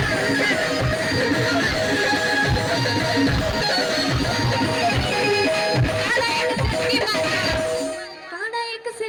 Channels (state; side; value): identical; both; correlation 1.00